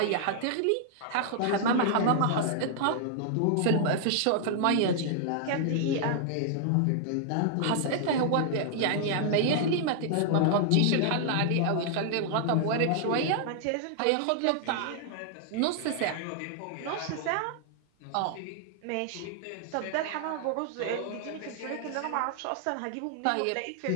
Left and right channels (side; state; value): both; different; correlation -0.01